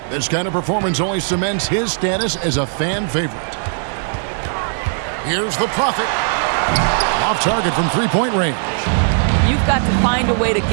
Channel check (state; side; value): silent; left; digital silence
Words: This kind of performance only cements his status as a fan favorite. Here's the Prophet. Off target from three-point range. You've got to find a way to